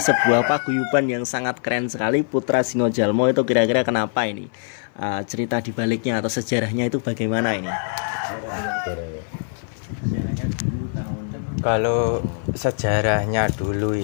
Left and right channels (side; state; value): right; silent; 58 dB below the other